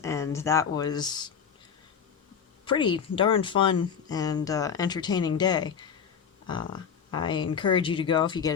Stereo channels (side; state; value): right; quieter; 7.2 dB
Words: that was pretty darn fun and entertaining day. I encourage you to go if you get